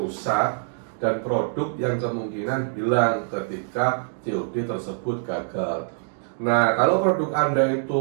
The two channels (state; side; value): silent; left; digital silence